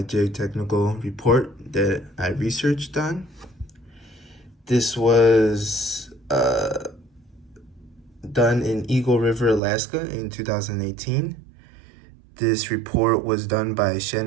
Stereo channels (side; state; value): left; drops out; at 9.6 s